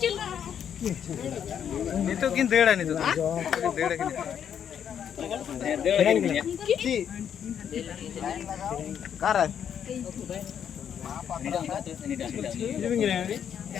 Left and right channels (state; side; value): quieter; right; 8.7 dB